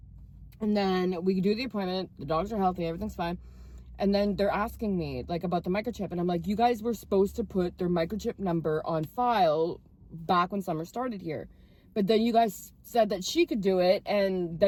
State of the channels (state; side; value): identical; both; correlation 1.00